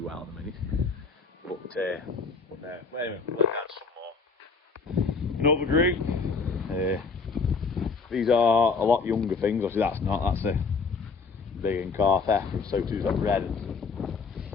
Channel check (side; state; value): right; quieter; 4.8 dB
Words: well at the minute. But no, anyway, we'll let down some more. Another group. These are a lot younger things. Obviously, that's a big and calf heifer, and so too is that red.